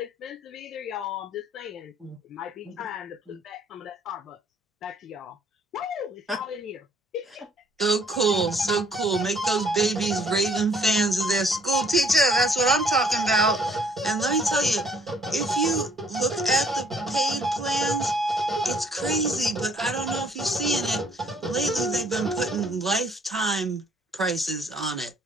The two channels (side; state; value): both; normal; correlation 0.62